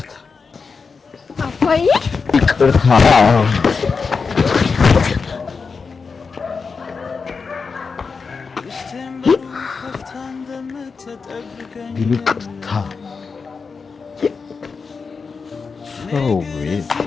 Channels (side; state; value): right; quieter; 5.0 dB